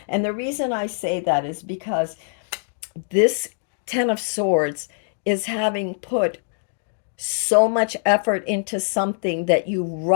And the reason I say that is because this Ten of Swords is having put so much effort into something that you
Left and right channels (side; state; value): right; silent; digital silence